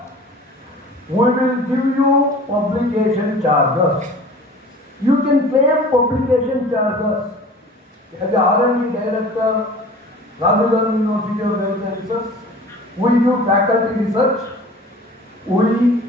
we will give you publication charges. You can claim publication charges. As the R&D director, Rajasthan University of Health Sciences, we do faculty research, we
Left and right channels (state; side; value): normal; both; correlation 0.43